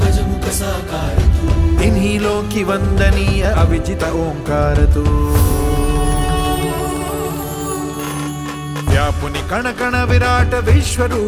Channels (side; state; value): both; identical; correlation 1.00